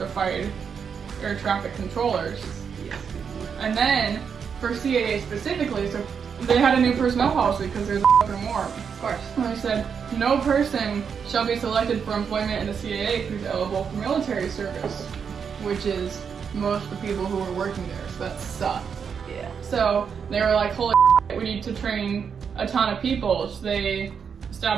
air traffic controllers. And then for CAA specifically, so they had a new personnel policy because there's a fucking war. Of course. And they said, no person shall be selected for employment in the CAA who's eligible for military service, which is most of the people who were working there, so that sucked. Yeah. So they were like, holy shit, we need to train a ton of people. So they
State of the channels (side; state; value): left; quieter; 6.7 dB